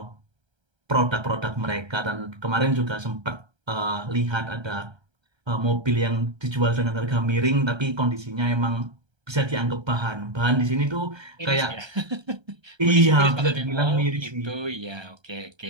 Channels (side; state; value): left; late; 1.3 ms